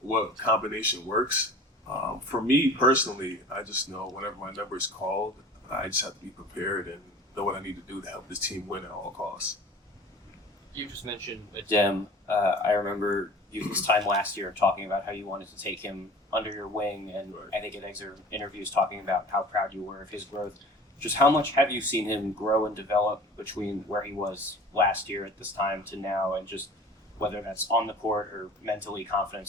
combination works. For me personally, I just know whenever my number is called, I just have to be prepared and know what I need to do to help this team win at all costs. You just mentioned Adem. I remember you this time last year talking about how you wanted to take him under your wing, and Right. I think in excerpt interviews talking about how proud you were of his growth. Just how much have you seen him grow and develop between where he was last year at this time to now, and just whether that's on the court or mentally,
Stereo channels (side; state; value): both; normal; correlation 0.42